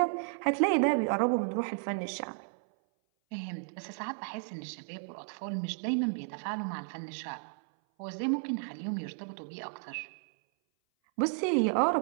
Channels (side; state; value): left; silent; 56 dB below the other